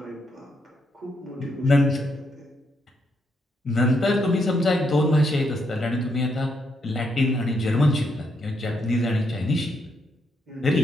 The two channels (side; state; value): both; normal; correlation 0.77